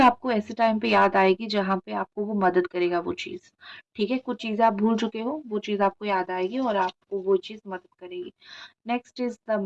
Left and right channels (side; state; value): both; identical; correlation 1.00